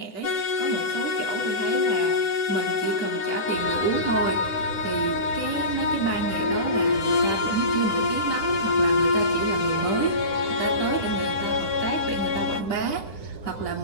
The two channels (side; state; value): right; late; 10 ms